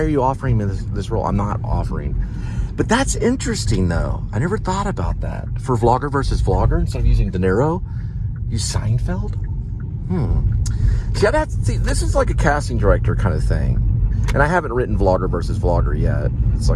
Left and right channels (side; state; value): both; identical; correlation 1.00